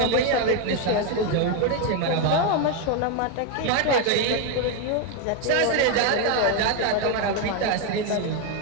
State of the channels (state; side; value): different; both; correlation 0.02